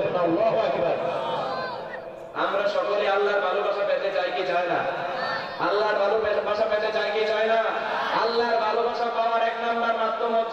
আল্লাহু আকবার। আমরা সকলে আল্লাহর ভালোবাসা পেতে চাই কি চাই না? আল্লাহর ভালোবাসা পেতে চাই কি চাই না? আল্লাহর ভালোবাসা পাওয়ার 1 নাম্বার মাধ্যম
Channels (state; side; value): identical; both; correlation 1.00